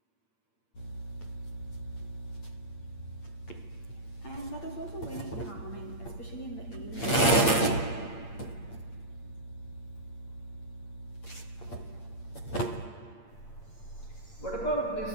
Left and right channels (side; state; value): right; late; 8.7 ms